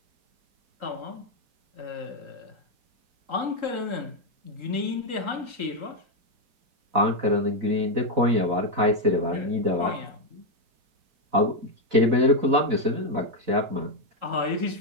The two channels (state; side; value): late; left; 4.0 ms